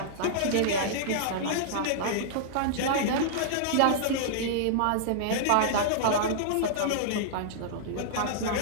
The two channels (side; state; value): both; different; correlation -0.02